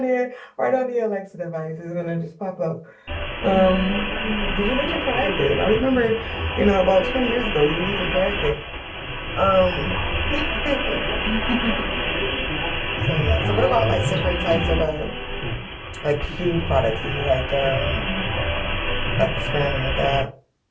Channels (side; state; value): both; identical; correlation 1.00